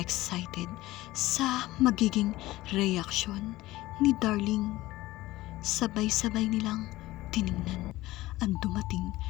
sa magiging reaksyon ni Darling. Sabay-sabay nilang tiningnan ang dumating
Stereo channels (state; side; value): quieter; right; 17.6 dB